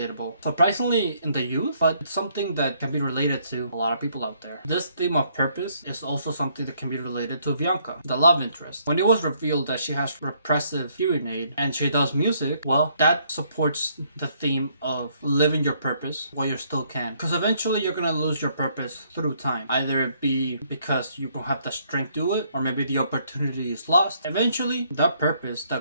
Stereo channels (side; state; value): both; inverted; correlation -0.68